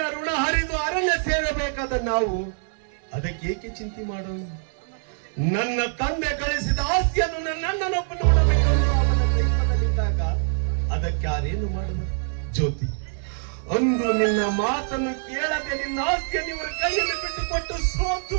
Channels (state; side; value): silent; left; 62 dB below the other